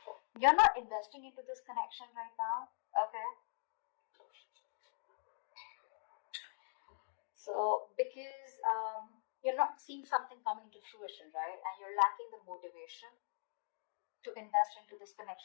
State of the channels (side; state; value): right; silent; digital silence